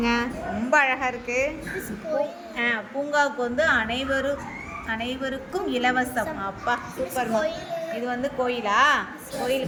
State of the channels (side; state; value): both; identical; correlation 1.00